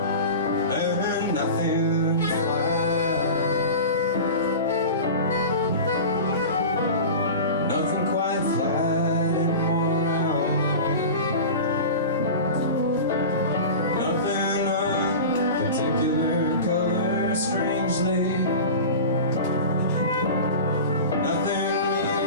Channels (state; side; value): inverted; both; correlation -0.32